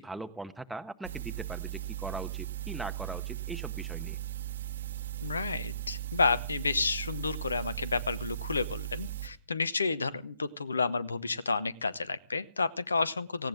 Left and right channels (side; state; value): both; inverted; correlation -0.67